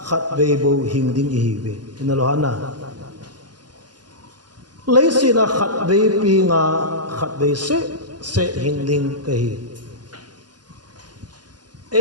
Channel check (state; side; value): late; left; 0.70 ms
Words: khát về bộ hình đinh ý về nên là hana lấy xin là khát về pinga khát về sẽ hình đinh cái